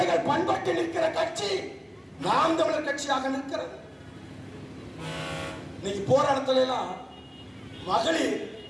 பண்பட்டு நிற்கிற கட்சி நாம் தமிழர் கட்சியாக நிற்கிறது. இன்னைக்கு போராட்டத்துல எல்லாம் மகளிர்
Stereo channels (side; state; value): both; identical; correlation 1.00